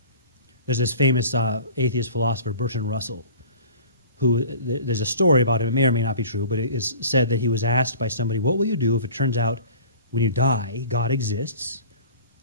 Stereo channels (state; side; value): inverted; both; correlation -0.44